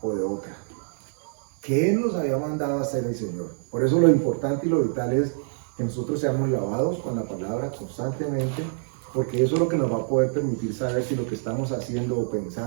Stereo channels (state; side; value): silent; left; digital silence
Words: o de otra? ¿Qué nos había mandado a hacer el Señor? Por eso lo importante y lo vital es que nosotros seamos lavados con la palabra constantemente, porque eso es lo que nos va a poder permitir saber si lo que estamos haciendo o